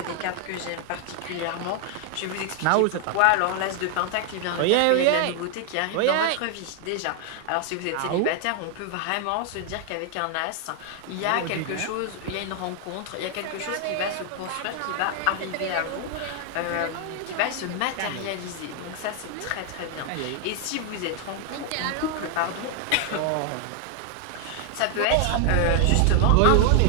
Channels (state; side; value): different; both; correlation 0.00